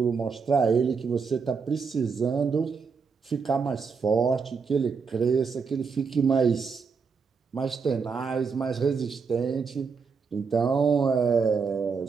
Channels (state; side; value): quieter; left; 5.4 dB